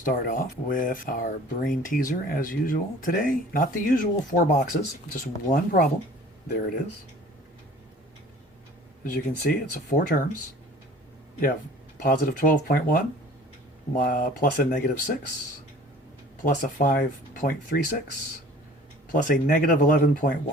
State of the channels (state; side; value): normal; both; correlation 0.48